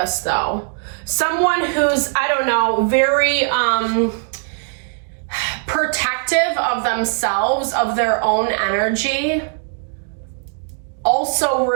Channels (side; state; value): left; silent; digital silence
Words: though. Someone who's, I don't know, very protective of themselves, of their own energy, also